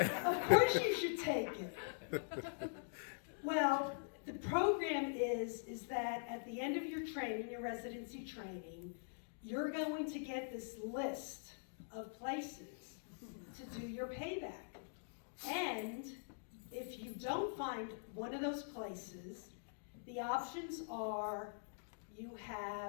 Of course you should take it. Well, the program is that at the end of your training, your residency training, you're going to get this list of places to do your payback. And if you don't find one of those places, the options are you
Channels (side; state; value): right; silent; digital silence